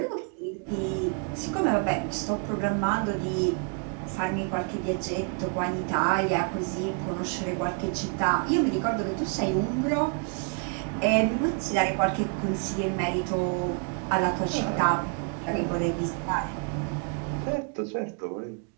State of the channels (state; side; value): quieter; left; 39.8 dB